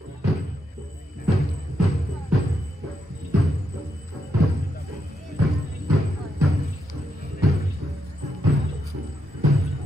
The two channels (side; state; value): both; normal; correlation 0.81